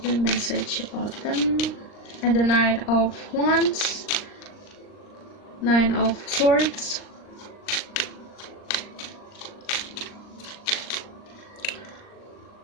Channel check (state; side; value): late; right; 39 ms